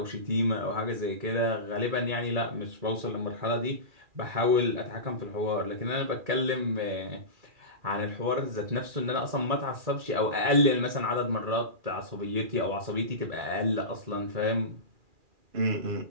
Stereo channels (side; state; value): left; late; 2.4 ms